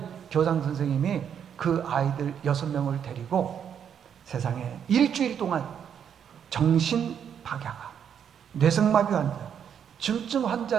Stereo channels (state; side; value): quieter; left; 8.3 dB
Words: 교장 선생님이 그 아이들 6명을 데리고 세상에 일주일 동안 정신박약아, 뇌성마비 환자, 중증